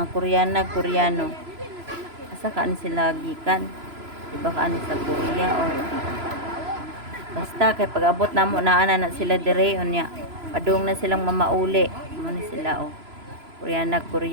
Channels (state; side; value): late; left; 3.0 ms